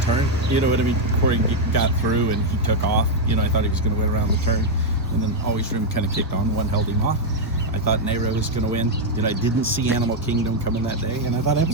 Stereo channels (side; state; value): both; normal; correlation 0.01